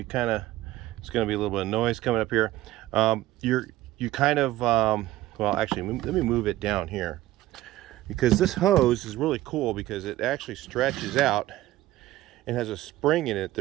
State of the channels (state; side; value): quieter; left; 15.8 dB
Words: going to be a little bit of noise coming up here. You kind of, well, actually, let me move it down here, because this hose is really cool because it actually stretches out and has a spring in it